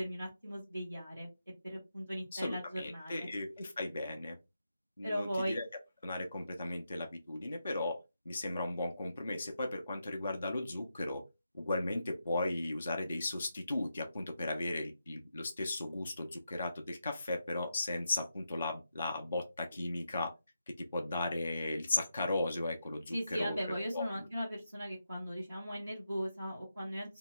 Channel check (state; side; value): inverted; both; correlation -0.86